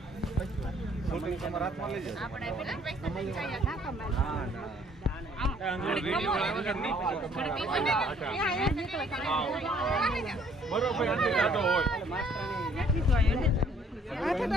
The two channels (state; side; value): normal; both; correlation 0.61